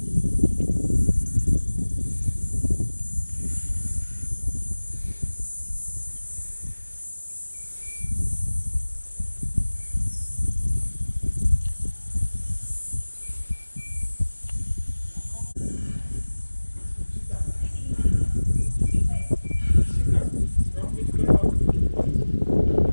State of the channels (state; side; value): inverted; both; correlation -1.00